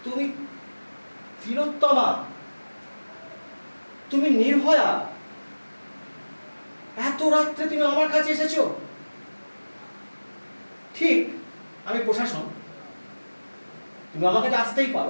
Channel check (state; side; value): inverted; both; correlation -1.00